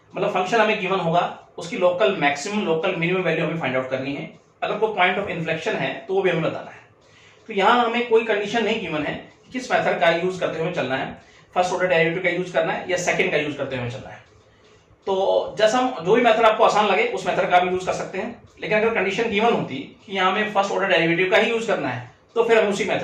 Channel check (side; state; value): both; identical; correlation 1.00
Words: मतलब फंक्शन हमें गिवन होगा, उसकी local maximum local minimum value हमें फाइंड आउट करनी है। अगर कोई पॉइंट ऑफ इन्फ्लेक्शन है तो वो भी हमें बताना है। तो यहाँ हमें कोई कंडीशन नहीं गिवन है किस मेथड का यूज करते हुए चलना है, फर्स्ट ऑर्डर डेरिवेटिव का यूज करना है या सेकंड का यूज करते हुए चलना है। तो जैसा हम जो भी मेथड आपको आसान लगे उस मेथड का भी यूज कर सकते हैं, लेकिन अगर कंडीशन गिवन होती कि यहाँ हमें फर्स्ट ऑर्डर डेरिवेटिव का ही यूज करना है तो फिर हमें उसी